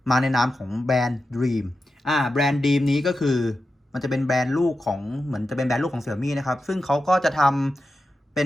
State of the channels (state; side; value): normal; both; correlation 0.91